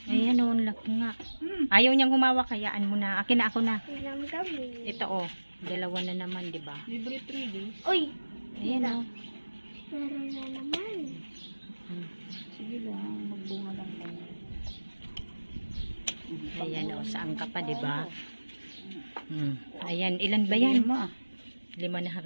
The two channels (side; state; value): both; inverted; correlation -1.00